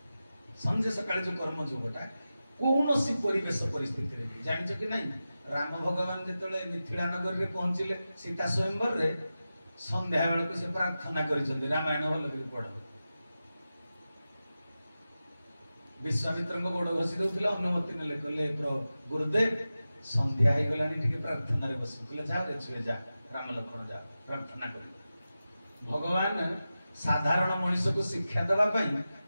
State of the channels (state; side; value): inverted; both; correlation -0.93